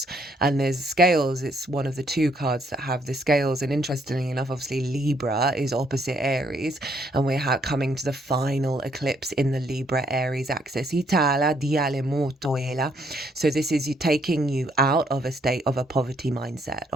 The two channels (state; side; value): normal; both; correlation 0.70